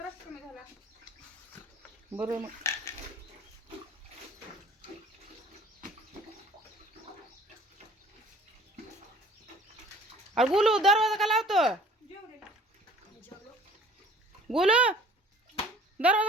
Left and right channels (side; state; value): both; normal; correlation 0.50